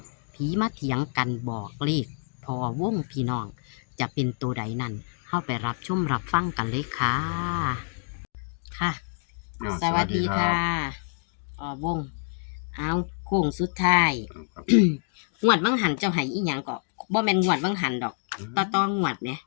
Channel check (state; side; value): silent; right; 60 dB below the other